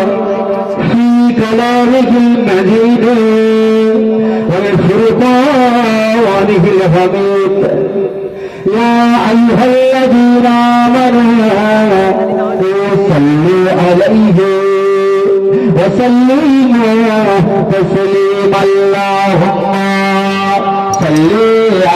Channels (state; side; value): identical; both; correlation 1.00